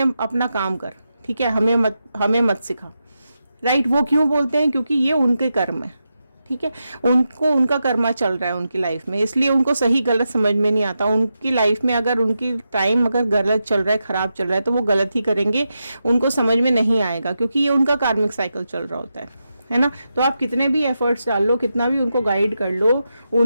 अपना काम कर, ठीक है, हमें मत सिखा। राइट, वो क्यों बोलते हैं? क्योंकि ये उनके कर्म है। ठीक है, उनको उनका कर्मा चल रहा है उनकी लाइफ में, इसलिए उनको सही गलत समझ में नहीं आता। उनकी लाइफ में अगर उनकी टाइम अगर गलत चल रहा है, खराब चल रहा है, तो वो गलत ही करेंगे, उनको समझ में नहीं आएगा, क्योंकि ये उनका कार्मिक साइकिल चल रहा होता है ना। तो आप कितने भी एफर्ट्स डाल लो, कितना भी उनको गाइड कर लो,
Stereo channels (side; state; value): both; inverted; correlation -0.88